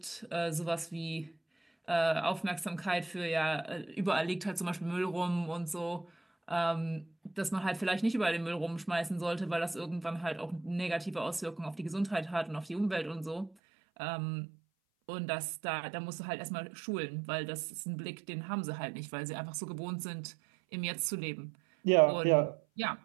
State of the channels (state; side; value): drops out; left; at 13.5 s